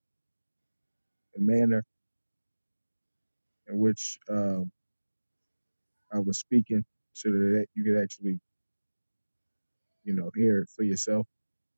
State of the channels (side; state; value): both; inverted; correlation -1.00